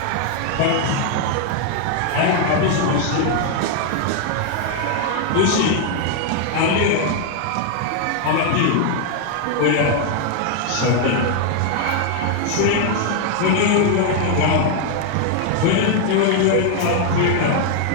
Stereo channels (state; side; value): different; both; correlation 0.00